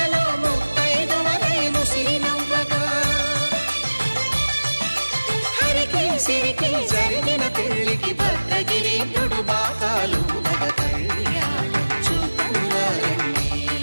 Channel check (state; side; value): inverted; both; correlation -1.00